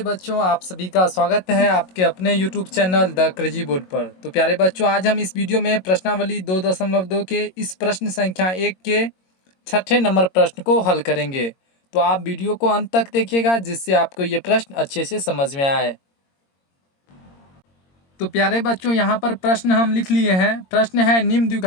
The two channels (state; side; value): late; right; 22 ms